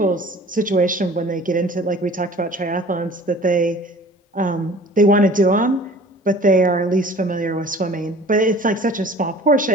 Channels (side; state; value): both; normal; correlation 0.47